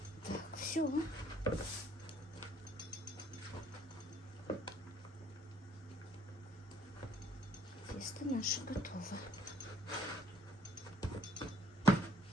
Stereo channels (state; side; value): normal; both; correlation 0.63